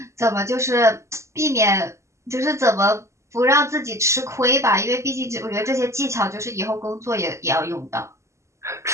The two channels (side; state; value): left; late; 0.14 ms